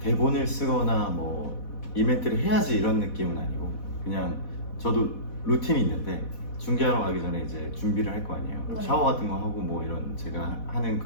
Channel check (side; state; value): right; late; 4.1 ms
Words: 대본을 쓰거나 뭐 이벤트를 해야지 이런 느낌은 아니고 그냥 저도 루틴이 있는데 중계하러 가기 전에 이제 준비를 할 거 아니에요. 네. 샤워 같은 거 하고 뭐 이런 제가 하는